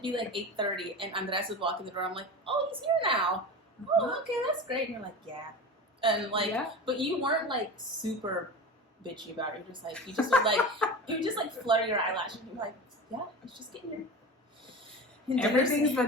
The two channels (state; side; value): normal; both; correlation 0.30